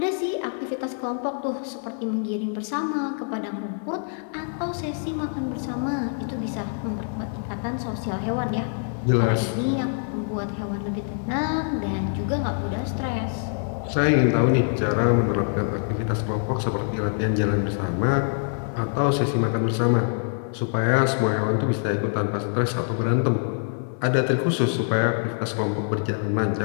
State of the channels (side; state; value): right; silent; 62 dB below the other